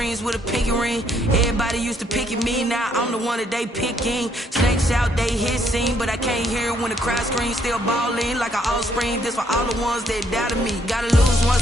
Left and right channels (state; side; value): normal; both; correlation 0.70